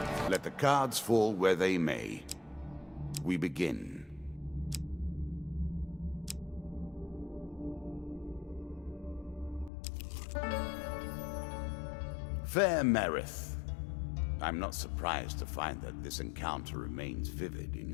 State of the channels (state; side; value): drops out; right; at 9.7 s